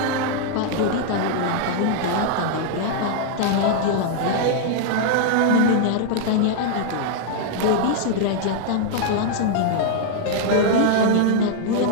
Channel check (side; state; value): both; different; correlation 0.00